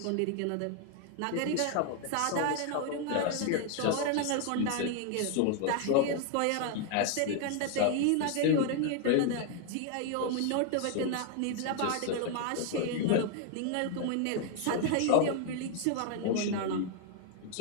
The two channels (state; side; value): different; both; correlation 0.00